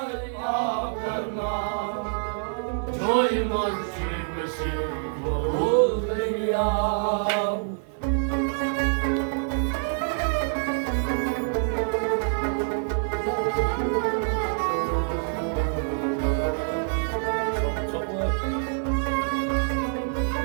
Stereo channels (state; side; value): silent; left; digital silence